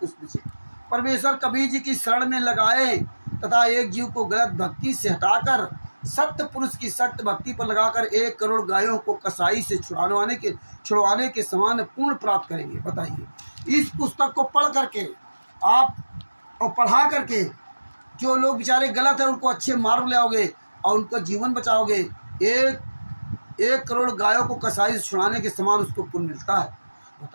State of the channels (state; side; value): inverted; both; correlation -1.00